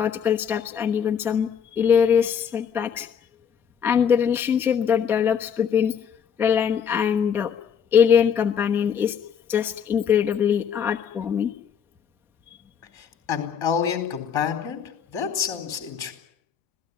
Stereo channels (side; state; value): right; quieter; 7.7 dB